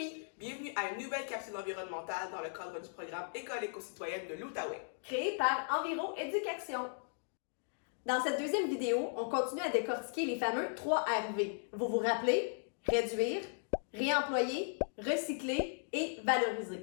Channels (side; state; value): right; silent; digital silence